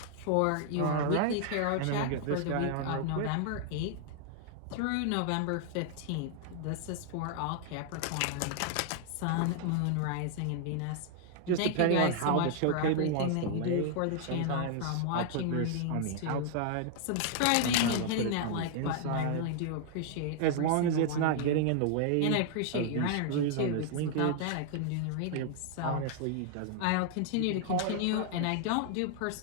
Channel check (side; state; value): both; different; correlation 0.00